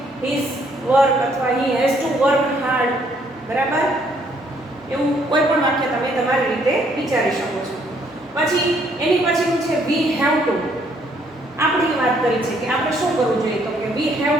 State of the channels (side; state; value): both; normal; correlation 0.67